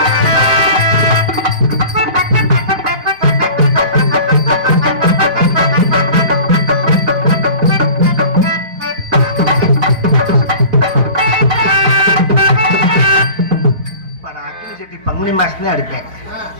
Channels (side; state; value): left; late; 4.1 ms